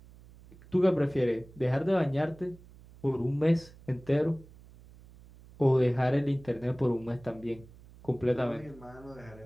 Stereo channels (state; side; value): noise; right; hum, 22 dB below the sound